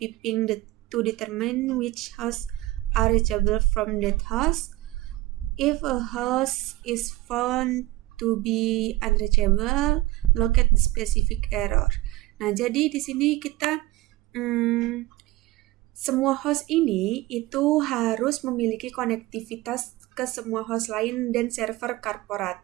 ping to determine which hosts are reachable from that host. If a host is found to be unreachable, locate the specific error. Nah, jadi di sini kita semua host ini itu harus memiliki konektivitas ke semua host lain dan server korporat.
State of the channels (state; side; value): quieter; left; 18.3 dB